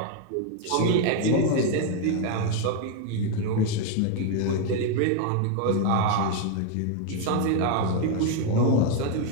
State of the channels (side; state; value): both; different; correlation 0.01